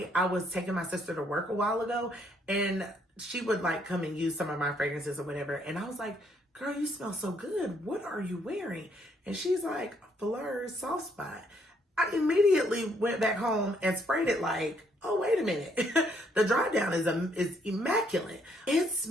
I was taking my sister to work a while ago and she would like come and use some of my fragrances or whatever. And I was like, girl, you smell so good. What are you wearing? And she's like, Fleur Soft Spot. I immediately went back home and sprayed it like, oh, wait a minute. The dry down is immaculate. It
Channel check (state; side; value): normal; both; correlation 0.69